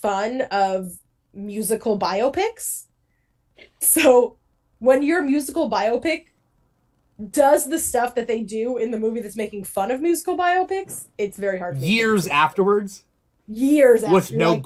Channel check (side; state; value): both; identical; correlation 1.00